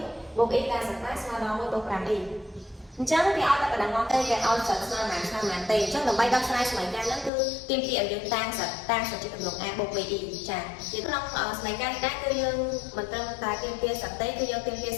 1បូក e ការសិក្សាស្មើដល់1បូក 5e អញ្ចឹងគេឲ្យតែបដងមកទេគេឲ្យសិតស្មើប៉ុន្មានទេអញ្ចឹងដើម្បីដោះស្រាយសមីការហ្នឹងគឺទាមទារឲ្យយើងតាំងសិតជាទម្រង់ a បូក be ចាក្នុងសមីការនេះដែរគឺយើងមិនត្រឹមតែទាមទារសិតទេគឺយើងទាមទារ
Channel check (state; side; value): drops out; right; at 7.3 s